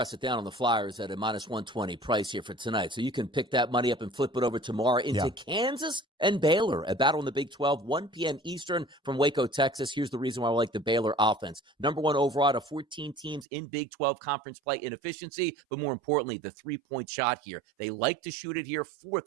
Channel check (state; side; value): drops out; left; at 13.5 s